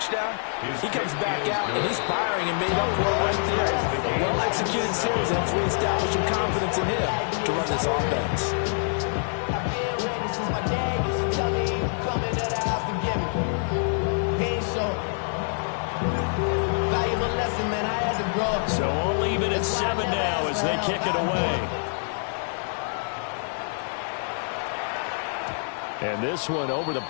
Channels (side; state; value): right; silent; 61 dB below the other